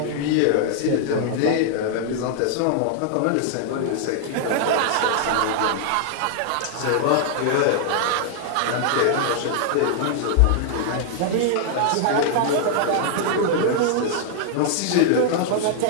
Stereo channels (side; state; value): both; different; correlation -0.01